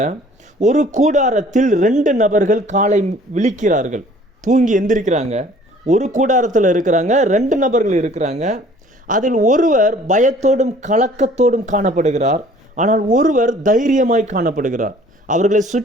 ஒரு கூடாரத்தில் 2 நபர்கள் காலை விழிக்கிறார்கள். தூங்கி எந்திரிக்கிறாங்க. ஒரு கூடாரத்தில் இருக்கிறாங்க, 2 நபர்கள் இருக்கிறாங்க. அதில் ஒருவர் பயத்தோடும் கலக்கத்தோடும் காணப்படுகிறார், ஆனால் ஒருவர் தைரியமாய் காணப்படுகிறார். அவர்களை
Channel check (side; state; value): both; normal; correlation 0.53